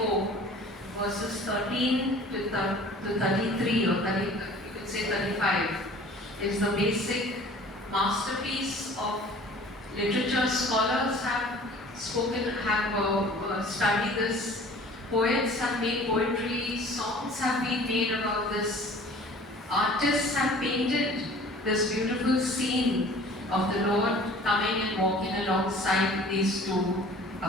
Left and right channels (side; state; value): both; normal; correlation 0.48